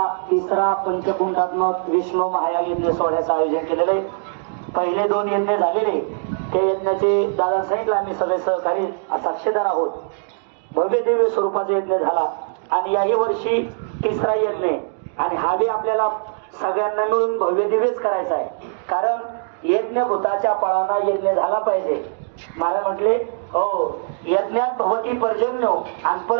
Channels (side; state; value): left; silent; digital silence